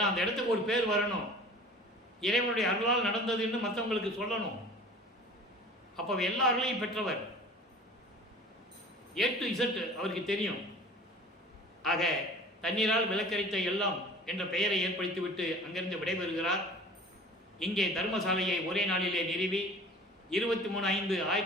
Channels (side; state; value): both; normal; correlation 0.43